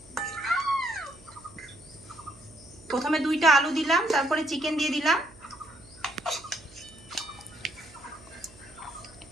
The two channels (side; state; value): right; noise; hum, 23 dB below the sound